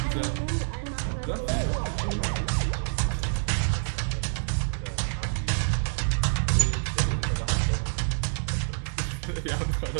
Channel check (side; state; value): left; silent; digital silence